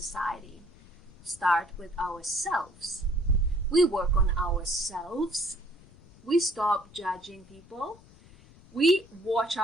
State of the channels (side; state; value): left; noise; rumble, 24 dB below the sound